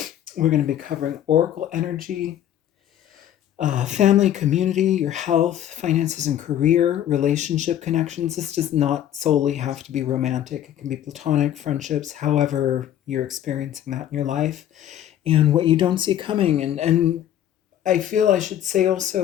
We're going to be covering Oracle energy, family, community, your health, finances, and career, relationship connections. This does not solely have to be romantic, it can be platonic, friendships, however you're experiencing that in your life, and what you don't see coming. And I feel I should say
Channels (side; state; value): right; quieter; 11.2 dB